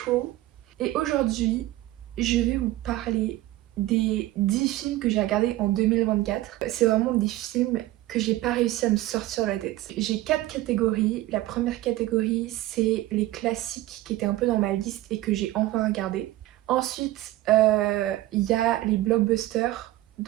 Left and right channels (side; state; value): left; quieter; 16.3 dB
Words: Et aujourd'hui je vais vous parler des 10 films que j'ai regardés en 2024. C'est vraiment des films que j'ai pas réussi à me sortir de la tête. J'ai 4 catégories. La première catégorie, c'est les classiques qui étaient un peu dans ma liste et que j'ai enfin regardé. Ensuite, il y a les blockbusters,